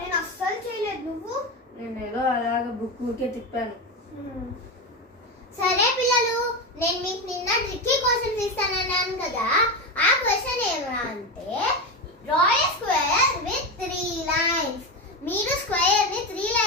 అస్సలు చేయలేదు. నువ్వు? నేను ఏదో అలాగే బుక్ ఊరికే తిప్పాను. సరే పిల్లలు, నేను మీకు నిన్న ట్రిక్కీ క్వశ్చన్స్ ఇస్తానన్నాను కదా. ఆ క్వశ్చన్ ఏమన్నా అంటే draw A square with 3 lines. మీరు స్క్వేర్ ని 3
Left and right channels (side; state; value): both; normal; correlation 0.16